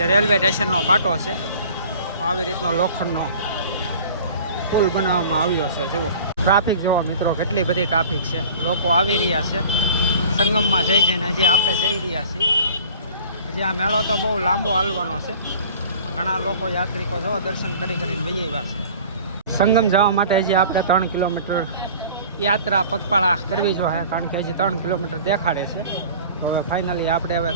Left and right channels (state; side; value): inverted; both; correlation -0.45